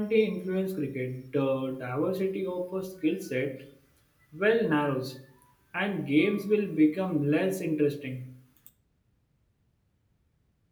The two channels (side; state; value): both; identical; correlation 1.00